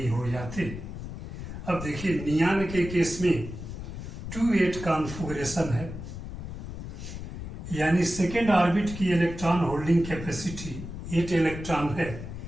हो जाते। अब देखिए नियान के केस में 2-8 कॉन्फ़िगरेशन है, यानी सेकेंड ऑर्बिट की इलेक्ट्रॉन होल्डिंग कैपेसिटी 8 इलेक्ट्रॉन है।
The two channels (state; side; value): noise; left; rumble, 9 dB below the sound